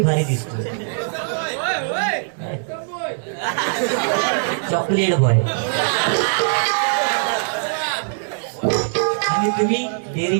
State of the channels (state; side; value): silent; left; digital silence